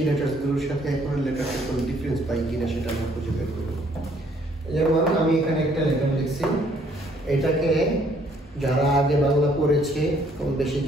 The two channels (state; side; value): normal; both; correlation 0.64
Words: লেটারগুলোর সাথে এখন লেটারের কোনো ডিফারেন্স পাই কিনা সেটা আমরা খুঁজে বের করব। যেমন আমি এখানে একটা লেটার লিখছি, এটাকে যারা আগে বাংলা পড়েছে কম বেশি